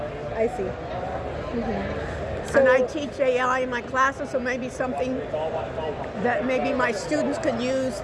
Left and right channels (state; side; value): identical; both; correlation 1.00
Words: I see. So, and I teach AI in my classes, so maybe something that maybe my students could use